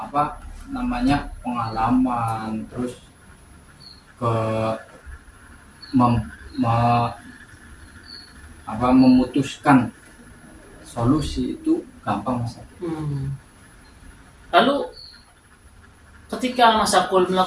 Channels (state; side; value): identical; both; correlation 1.00